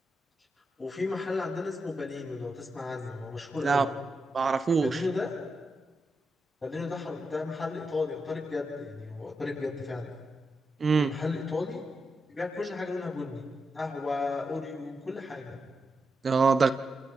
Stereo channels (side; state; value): both; normal; correlation 0.86